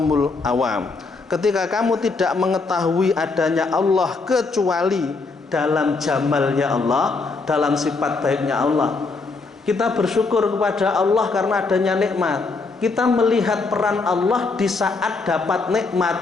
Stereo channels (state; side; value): quieter; right; 4.0 dB